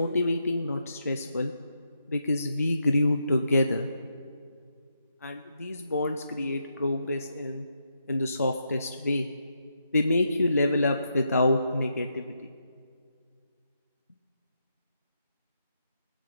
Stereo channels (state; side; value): inverted; both; correlation -0.81